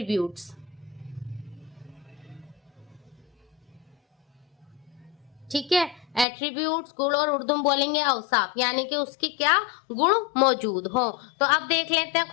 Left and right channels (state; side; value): drops out; right; at 6.2 s